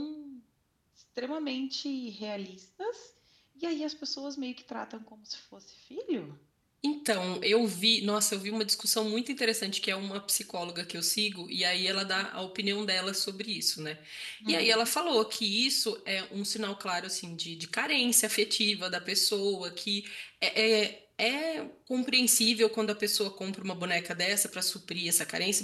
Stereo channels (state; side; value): identical; both; correlation 1.00